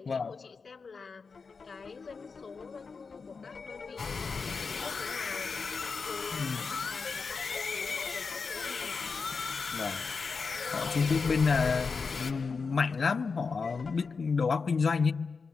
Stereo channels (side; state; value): right; quieter; 4.9 dB